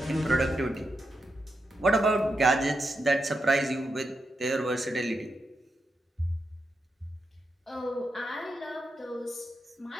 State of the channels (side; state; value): both; normal; correlation 0.85